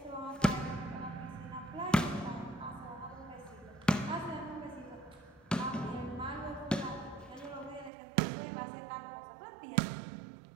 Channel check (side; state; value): left; drops out; at 7.9 s